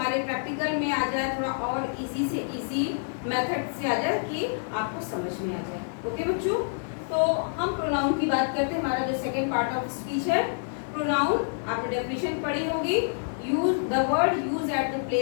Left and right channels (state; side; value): silent; right; digital silence